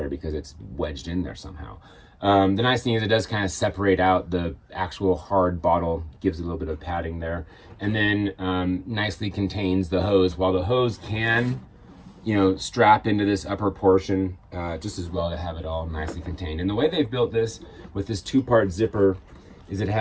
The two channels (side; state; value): both; identical; correlation 1.00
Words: because it's wedged in there somehow. The nice thing is it does kind of separate out the actual hard bottle, gives a little bit of padding there, and then nicely contains the hose. While the hose can, strap into this upper portion, just as well to have it all nicely contained. And the way they've built this with this 2-part zipper is it